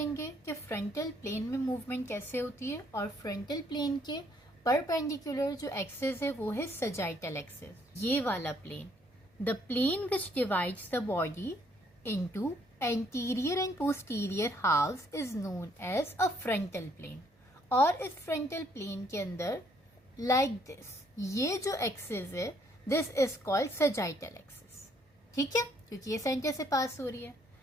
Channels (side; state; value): both; normal; correlation 0.67